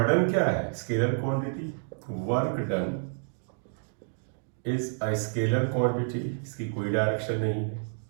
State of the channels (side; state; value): left; silent; digital silence